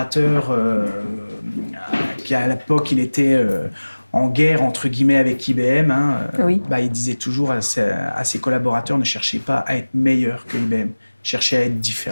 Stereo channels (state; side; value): inverted; both; correlation -1.00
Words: qui à l'époque il était en guerre entre guillemets avec IBM, Oui. Il disait toujours à ses collaborateurs, ne cherchez pas à être meilleur que IBM, cherchez à être